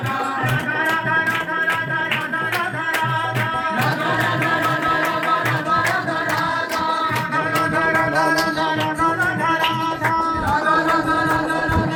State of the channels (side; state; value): both; identical; correlation 1.00